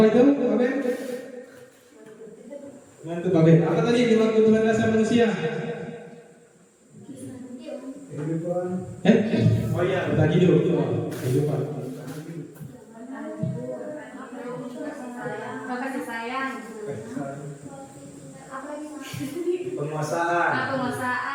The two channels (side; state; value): both; identical; correlation 1.00